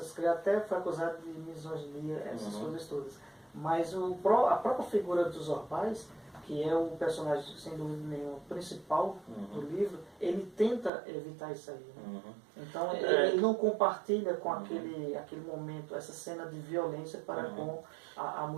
críticas, até foi acusado de misoginia, essas coisas todas. Mas a própria figura dos Orbais, que é o personagem, sem dúvida nenhuma, principal do livro, ele tenta evitar isso aí. Né? Então, ele não compartilha com aquele momento, essa cena de violência para com a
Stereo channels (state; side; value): drops out; left; at 10.9 s